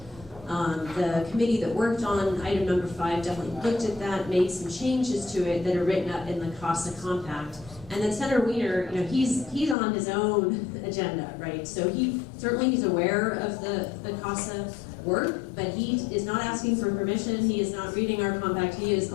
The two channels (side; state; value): right; drops out; at 9.8 s